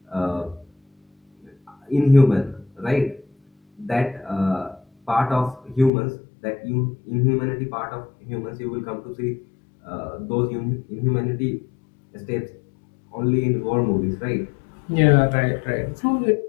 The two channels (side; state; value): right; drops out; at 5.9 s